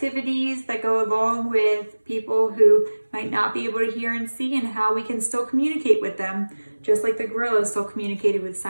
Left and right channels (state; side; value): inverted; both; correlation -1.00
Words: that go along with people who might not be able to hear and see, and how we can still communicate with them, just like the gorillas still communicated with